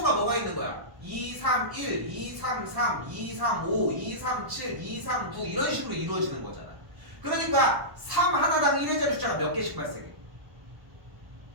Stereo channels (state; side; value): late; left; 1.1 ms